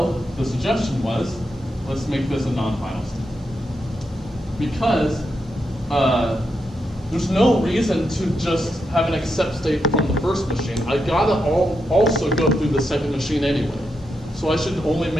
the suggestion was, let's make this a non-final state. Because there's no reason to just have an accept state from the first machine. I gotta also go through the second machine anyway. So I should only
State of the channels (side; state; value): both; normal; correlation 0.84